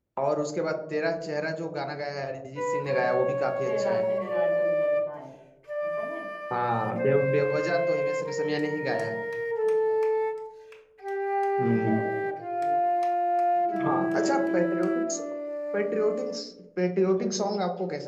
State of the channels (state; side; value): identical; both; correlation 1.00